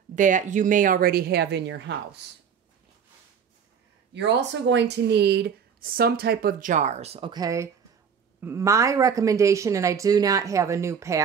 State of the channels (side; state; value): left; quieter; 7.2 dB